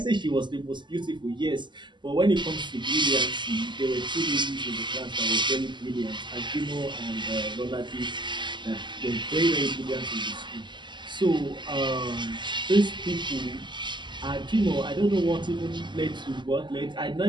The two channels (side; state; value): left; late; 0.22 ms